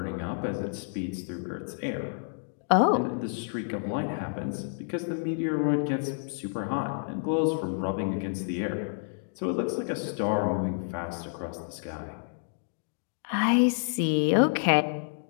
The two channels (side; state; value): right; silent; digital silence